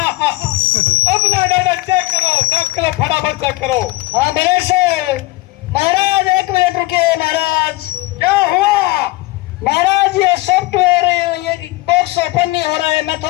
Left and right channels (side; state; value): right; quieter; 19.9 dB